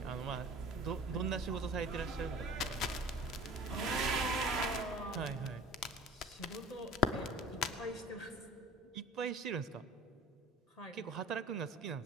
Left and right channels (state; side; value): normal; both; correlation 0.42